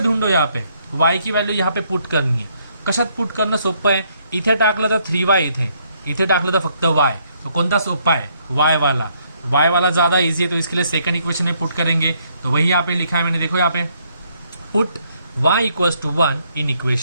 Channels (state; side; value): inverted; both; correlation -0.70